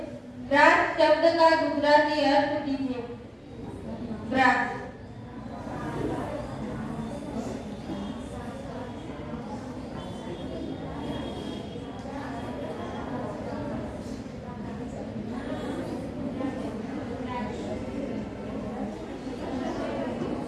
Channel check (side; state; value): both; identical; correlation 1.00